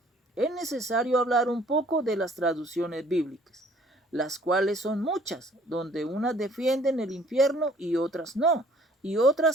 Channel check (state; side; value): normal; both; correlation 0.57